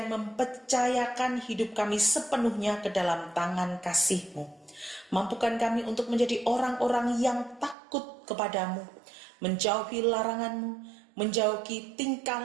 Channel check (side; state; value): left; drops out; at 7.8 s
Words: mempercayakan hidup kami sepenuhnya ke dalam tangan kasih-Mu. Mampukan kami untuk menjadi orang-orang yang takut kepadamu, menjauhi larangan-Mu, menjauhi